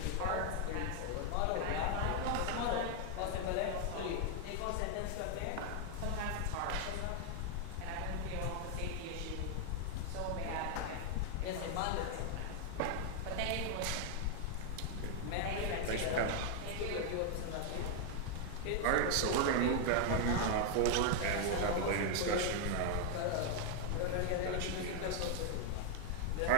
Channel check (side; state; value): both; different; correlation 0.00